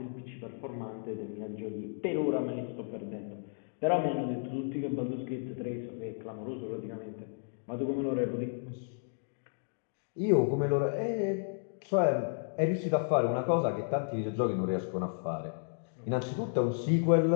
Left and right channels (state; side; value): silent; right; digital silence